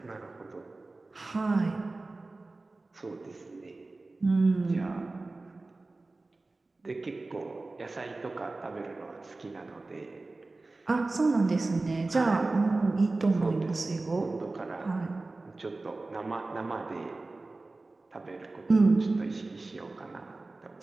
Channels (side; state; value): left; quieter; 3.3 dB